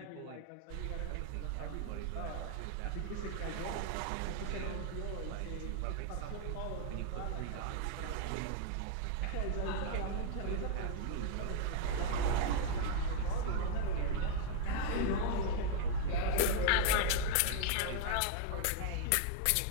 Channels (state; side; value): different; both; correlation 0.00